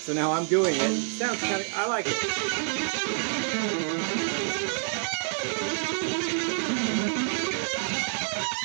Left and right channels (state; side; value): silent; left; 60 dB below the other